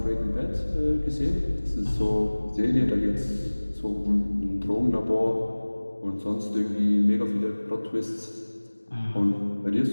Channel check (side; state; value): both; inverted; correlation -1.00